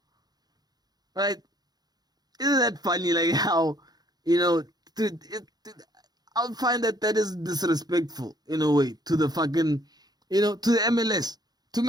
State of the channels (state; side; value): late; left; 0.19 ms